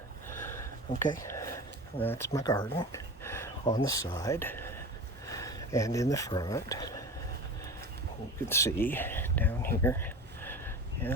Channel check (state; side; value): normal; both; correlation 0.32